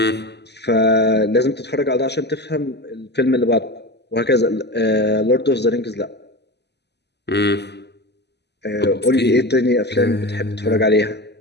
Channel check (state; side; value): late; right; 0.50 ms